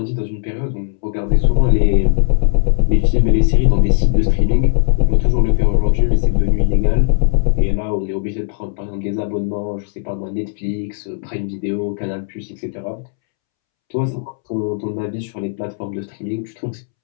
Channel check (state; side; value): silent; right; 68 dB below the other